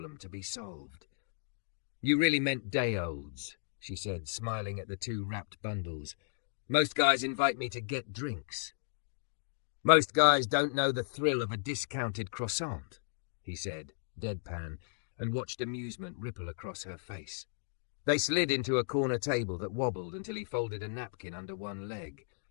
to be solved. You really meant day-olds, she said, smiling at the 2 wrapped bundles. Most guys invite me to get drinks. Most guys don't know the thrill of a discounted croissant, he said, deadpan, and watched amusement ripple across her face. They slid into a corner table that wobbled until he folded a napkin under one leg.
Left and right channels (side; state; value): right; silent; digital silence